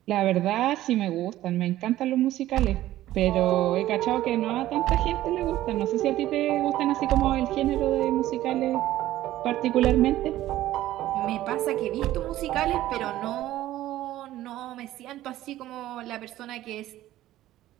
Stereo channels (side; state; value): left; quieter; 14.5 dB